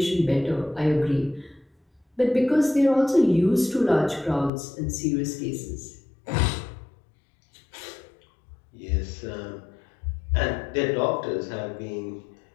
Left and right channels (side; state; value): right; drops out; at 4.5 s